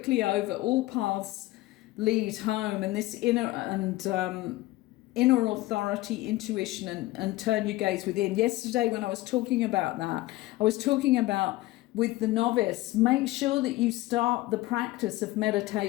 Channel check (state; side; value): quieter; right; 18.2 dB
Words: over all paths lead home, and this inner authority, intuition, and turn your gaze within. Yesterday when I was talking about that, I was talking about with the novice, make sure that you start the practice of